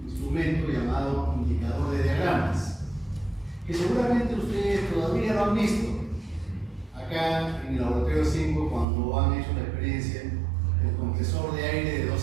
instrumento llamado indicador de diagramas, que seguramente ustedes todavía lo han visto acá en el laboratorio 5 cuando han hecho la experiencia del compresor de aire de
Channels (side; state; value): left; drops out; at 8.8 s